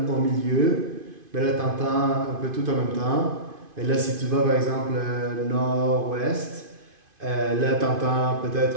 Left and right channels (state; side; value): late; left; 2.5 ms